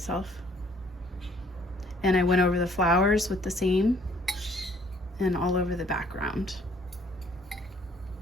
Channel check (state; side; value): normal; both; correlation 0.61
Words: And I went over the flowers with the same and all over the background.